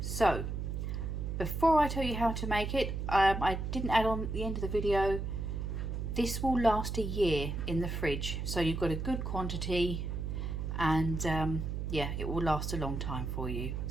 So before I tell you how to make it, I didn't add on at the end of the video, this will last a year in the fridge, so you've got a good quantity, and yeah, it will last a long time for you.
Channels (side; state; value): right; noise; hum, 3 dB below the sound